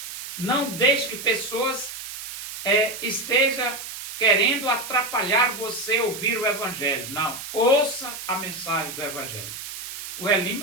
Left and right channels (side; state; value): right; noise; hiss, 9 dB below the sound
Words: Não deixe que pessoas estejam querendo atrapalhar você ouvir o Evangelho. Não, ouça a mensagem do Evangelho. O